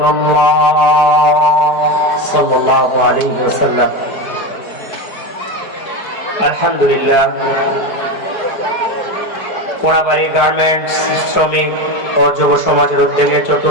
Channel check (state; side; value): late; right; 4.8 ms